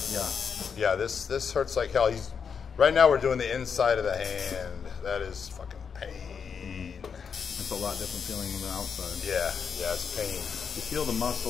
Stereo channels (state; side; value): quieter; right; 6.5 dB